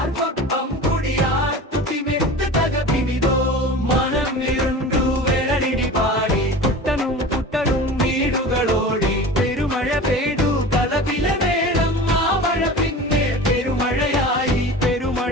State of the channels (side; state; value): both; normal; correlation 0.35